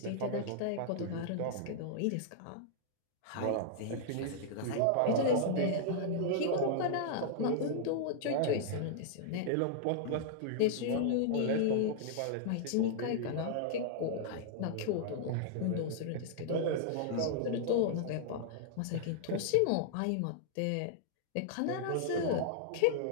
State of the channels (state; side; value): different; both; correlation -0.01